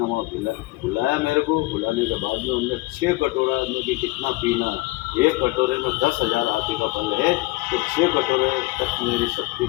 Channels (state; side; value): quieter; right; 20.9 dB